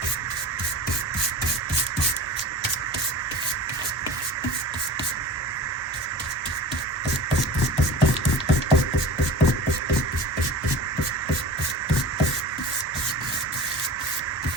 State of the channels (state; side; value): normal; both; correlation 0.37